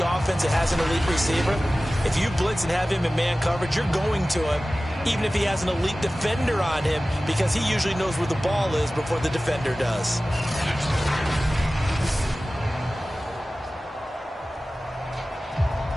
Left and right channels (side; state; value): both; normal; correlation 0.97